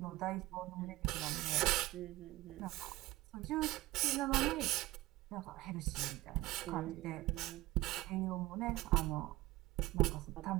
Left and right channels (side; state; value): left; quieter; 18.3 dB